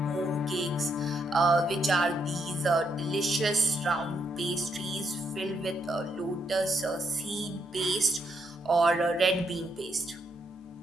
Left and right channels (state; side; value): normal; both; correlation 0.77